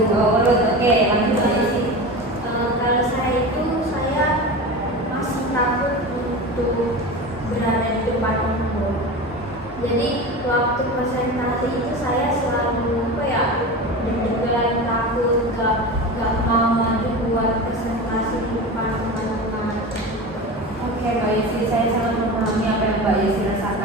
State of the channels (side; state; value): both; normal; correlation 0.28